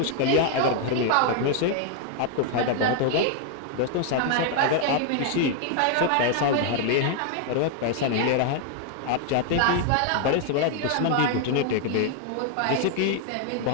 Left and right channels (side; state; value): both; different; correlation 0.00